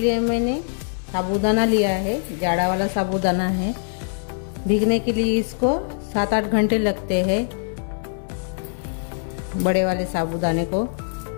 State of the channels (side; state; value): right; silent; digital silence